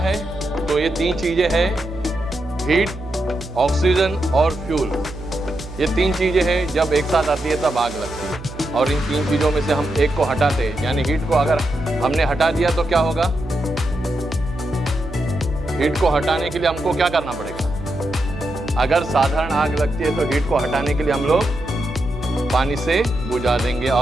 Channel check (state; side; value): noise; right; hum, 13 dB below the sound